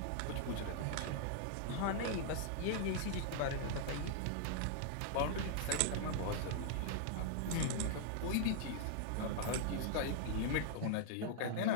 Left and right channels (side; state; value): both; different; correlation -0.01